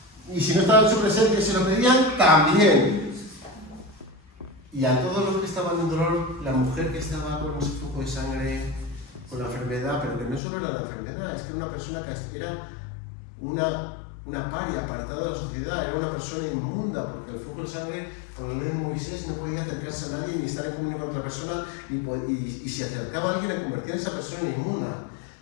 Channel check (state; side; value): drops out; right; at 10.4 s